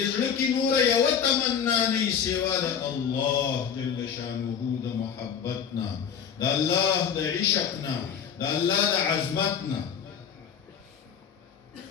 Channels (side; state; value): right; quieter; 7.7 dB